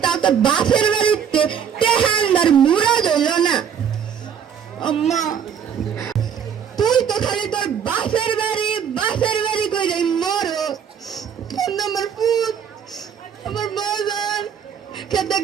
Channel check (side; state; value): left; quieter; 7.9 dB